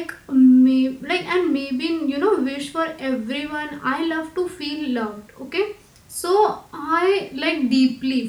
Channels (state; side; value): identical; both; correlation 1.00